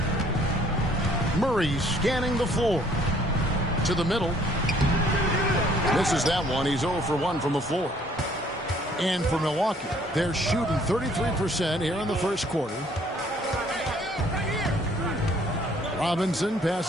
Murray scanning the floor. To the middle. Misses that one. He's 0 for 1 from the floor. And for Milwaukee, they're shooting 33% here in the first quarter. Robinson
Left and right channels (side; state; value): both; normal; correlation 0.60